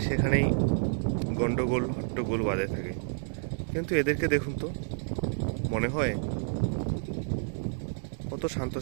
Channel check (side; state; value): left; silent; digital silence